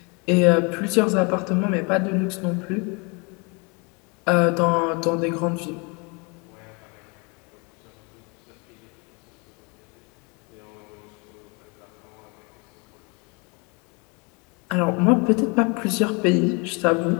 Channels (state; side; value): quieter; right; 31.1 dB